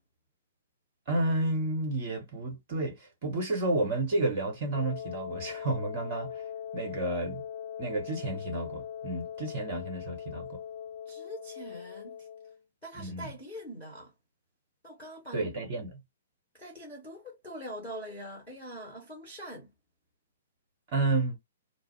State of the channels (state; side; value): inverted; both; correlation -0.45